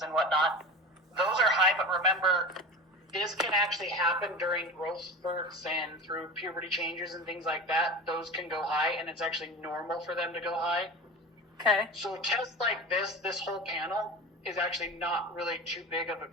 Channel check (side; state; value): both; normal; correlation 0.31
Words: and whatnot, those are high, but remember, this can actually happen during growth spurts and through puberty changes and things like that. Those can go high, and it's actually normal for them to go high. Okay. So tests like this whole panel is actually not really too big of a